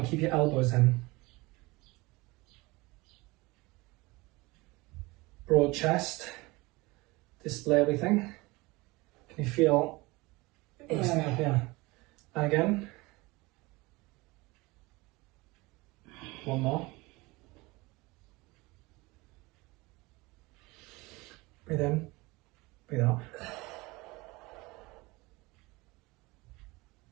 keep your elbows in. Broad chest. Display everything. Can you feel everything up here? And again. One more. Breathe in, breathe out.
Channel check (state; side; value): quieter; left; 22.9 dB